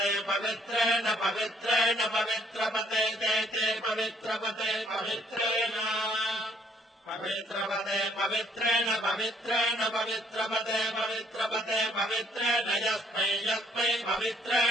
पवित्रेण पवित्रेण पवित्रपते ते पवित्रपते पवित्रेण पवित्रपते पवित्रेण पवित्रेण पवित्रपते पवित्रपते पवित्रेण यस्मै यस्मै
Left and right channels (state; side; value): normal; both; correlation 0.65